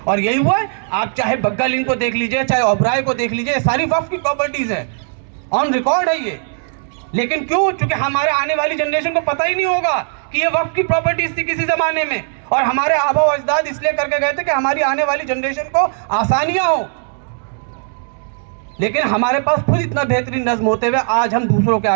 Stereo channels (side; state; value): left; silent; digital silence